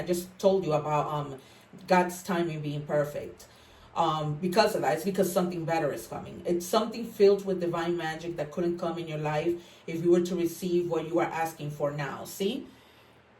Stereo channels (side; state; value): both; identical; correlation 1.00